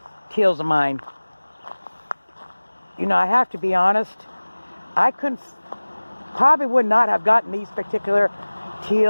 teals of mine. You know, I have to be honest, I probably would not have gotten these particular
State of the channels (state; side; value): inverted; both; correlation -1.00